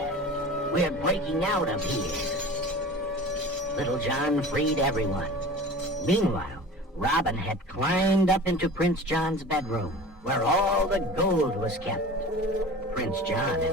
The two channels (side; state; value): both; normal; correlation 0.38